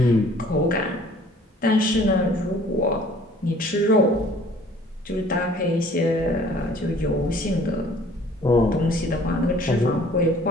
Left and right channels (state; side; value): normal; both; correlation 0.54